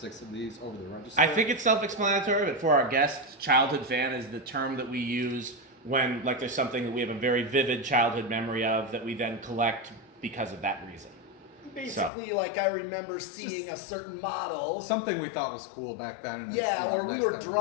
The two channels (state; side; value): drops out; right; at 12.1 s